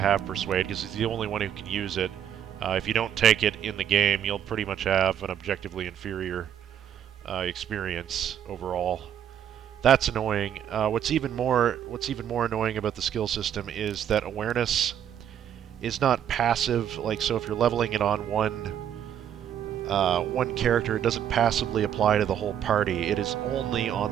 Persuade, because he's the only one who can use it. If you don't take it in the game, you'll pretty much have an objectively inferior experience overall. That's annoying. What's even more annoying about the skill system is that awareness is not passive. Like, so if you're leveling it on one character, it doesn't passively apply to the whole party. It is only on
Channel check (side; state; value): left; quieter; 9.6 dB